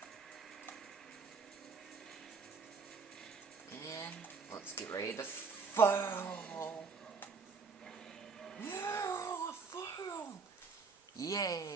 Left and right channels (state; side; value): quieter; left; 4.9 dB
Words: And let's get ready to fall. Yeah, fall.